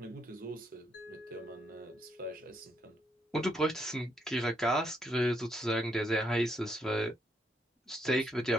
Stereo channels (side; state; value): both; normal; correlation 0.76